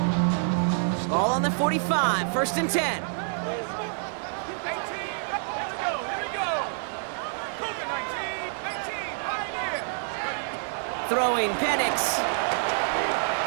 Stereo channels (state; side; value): silent; left; digital silence